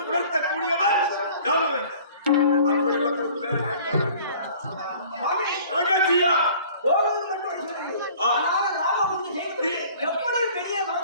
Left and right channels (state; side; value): inverted; both; correlation -0.50